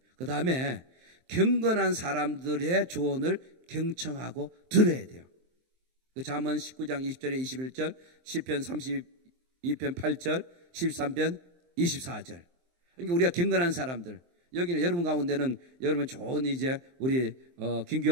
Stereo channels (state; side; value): late; left; 23 ms